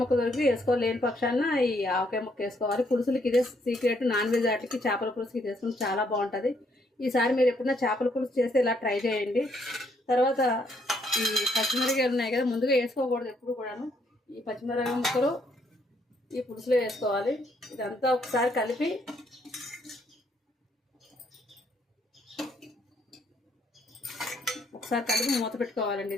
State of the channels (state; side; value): normal; both; correlation 0.71